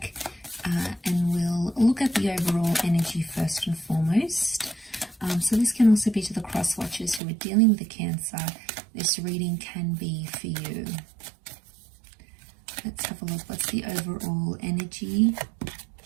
And we'll look at the overall energy first and foremost. So this can also be to the cross watchers who are dealing with the Cancer. This reading can be for you. Let's have a look. What's the overall energy?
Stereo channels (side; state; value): left; drops out; at 7.2 s